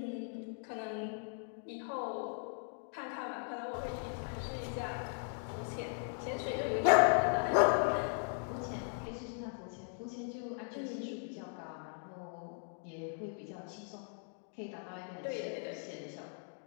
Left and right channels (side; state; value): right; silent; 52 dB below the other